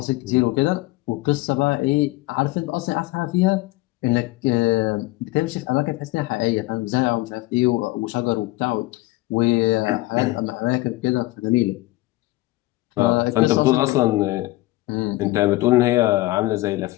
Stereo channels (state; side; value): quieter; right; 19.6 dB